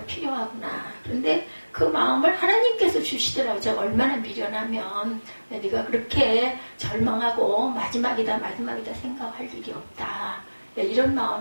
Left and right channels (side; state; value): both; inverted; correlation -1.00